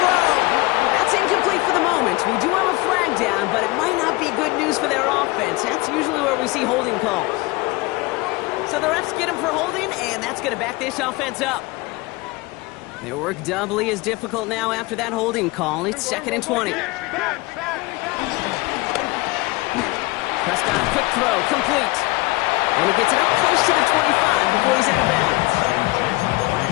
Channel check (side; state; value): right; quieter; 23.1 dB